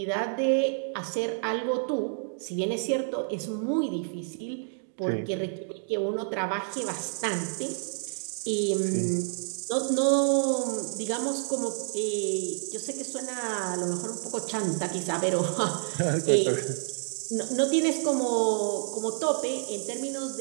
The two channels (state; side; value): silent; left; digital silence